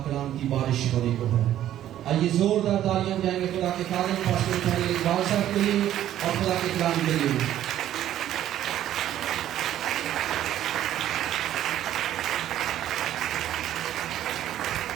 کلام کی بارش ہونے کو ہے. آئیے زوردار تالیاں جائیں گے خدا کے خادم پاسٹر پہلے بادشاہ کے لیے اور خدا کے کلام کے لیے.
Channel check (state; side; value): quieter; left; 12.0 dB